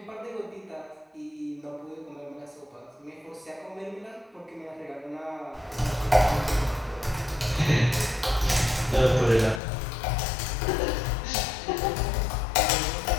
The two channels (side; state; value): right; drops out; at 9.6 s